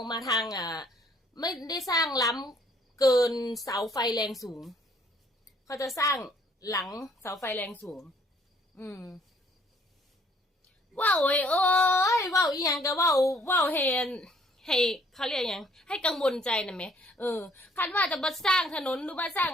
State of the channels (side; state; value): both; normal; correlation 0.62